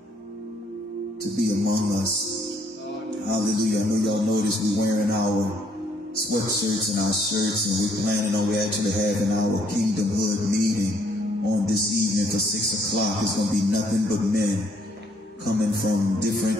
to be among us. Hallelujah. I know y'all noticed we're wearing our sweatshirts and our shirts, and we're planning on actually having our Kingdom Hood meeting on this evening for 6 o'clock. It's going to be nothing but men coming from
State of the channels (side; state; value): both; normal; correlation 0.67